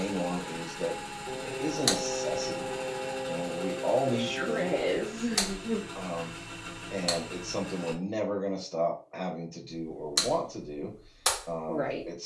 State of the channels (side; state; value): both; identical; correlation 1.00